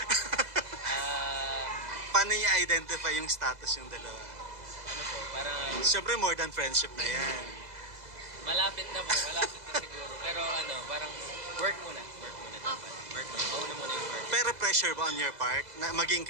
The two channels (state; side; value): late; left; 2.0 ms